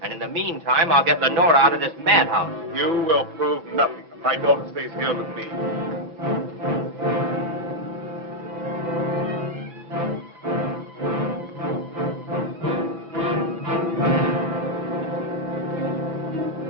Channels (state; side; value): late; left; 6.0 ms